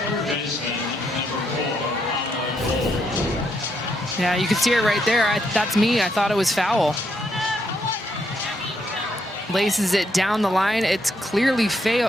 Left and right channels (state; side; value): normal; both; correlation 0.76